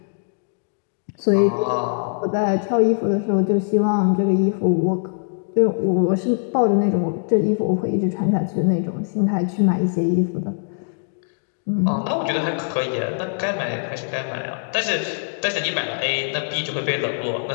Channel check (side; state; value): right; silent; digital silence